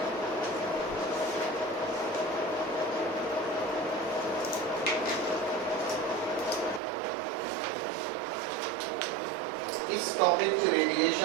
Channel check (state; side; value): drops out; left; at 6.8 s